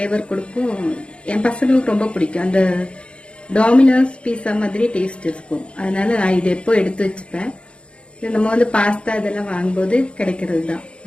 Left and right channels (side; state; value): right; late; 0.058 ms